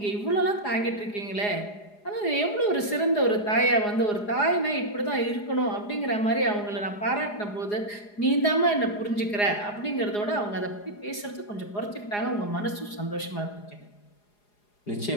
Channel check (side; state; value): right; late; 4.8 ms